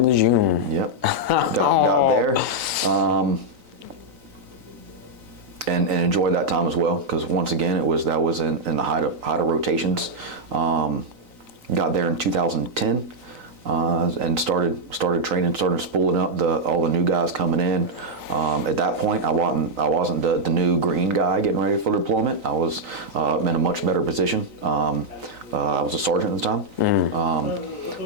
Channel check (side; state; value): left; late; 3.9 ms